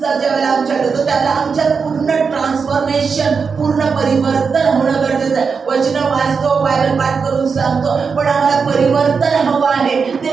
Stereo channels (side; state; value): left; quieter; 5.5 dB